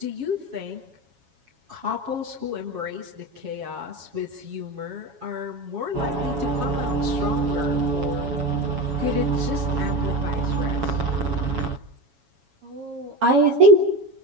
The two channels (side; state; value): left; late; 7.2 ms